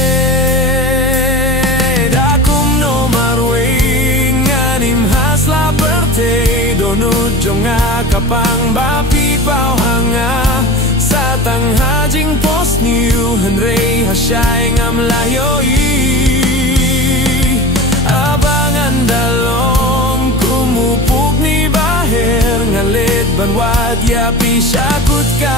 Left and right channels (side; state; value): both; normal; correlation 0.32